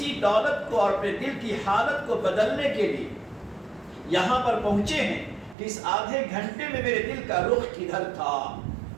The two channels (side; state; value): left; drops out; at 5.6 s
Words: دولت کو اور اپنے دل کی حالت کو بدلنے کے لیے یہاں پر پہنچے ہیں کہ اس آدھے گھنٹے میں میرے دل کا رخ کدھر تھا؟